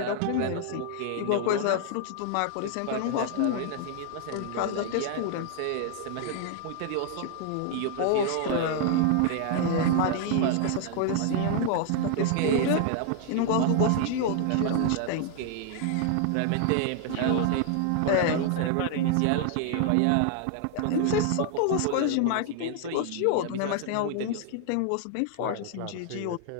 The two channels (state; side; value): different; both; correlation 0.00